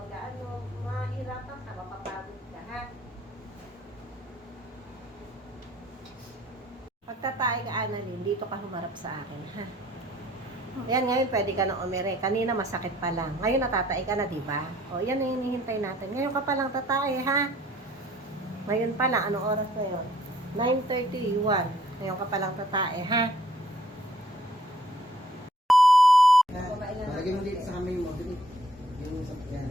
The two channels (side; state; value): both; normal; correlation 0.61